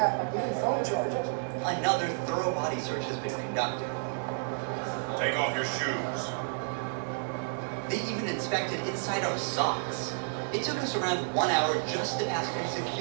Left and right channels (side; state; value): left; silent; 57 dB below the other